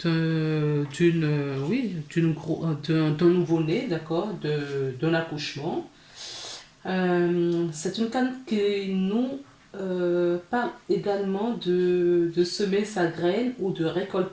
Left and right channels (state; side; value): identical; both; correlation 1.00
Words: d'un nouveau-né, d'accord, d'un accouchement. C'est une carte qui nous parle également de semer sa graine ou de